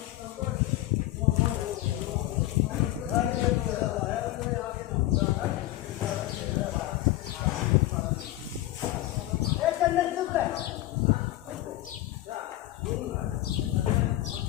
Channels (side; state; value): right; quieter; 15.7 dB